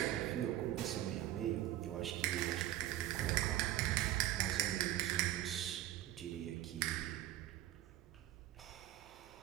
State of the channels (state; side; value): quieter; left; 14.0 dB